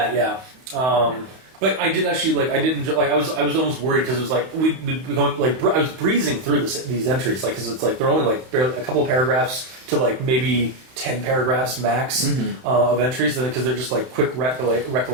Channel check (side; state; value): left; late; 31 ms